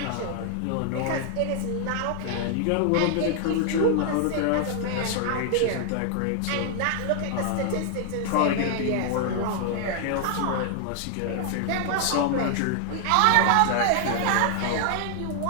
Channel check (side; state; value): both; different; correlation 0.00